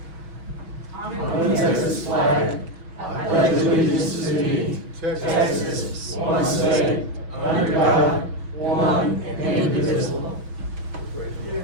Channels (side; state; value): left; late; 6.2 ms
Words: On the Texas flag, I pledge allegiance to thee, Texas, one state, under God, one and indivisible.